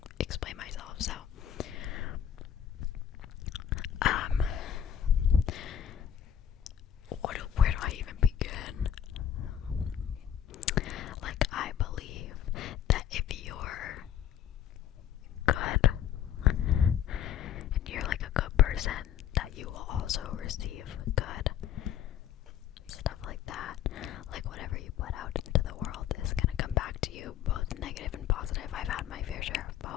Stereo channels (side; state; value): right; quieter; 9.7 dB